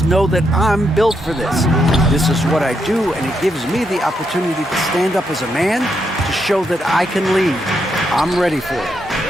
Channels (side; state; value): both; normal; correlation 0.80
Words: know that I'm built for this. This is what I do, and it gives me the opportunity to stand up as a man to show that I can lead. I'm ready for it.